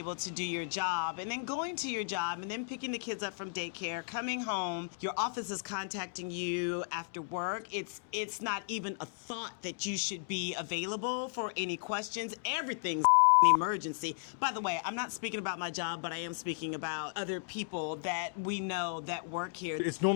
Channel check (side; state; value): right; silent; digital silence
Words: to do your job, and then going to your job and then picking the kids up from daycare, coming home, your office is contacting you after work. It's not even a thought that you should be available for any questions. Everything's an emergency. By the way, I'm not speaking about my job, but I am speaking about other people that we know that work here. It's